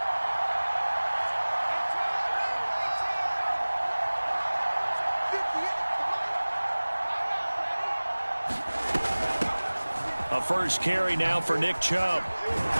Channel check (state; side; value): inverted; both; correlation -1.00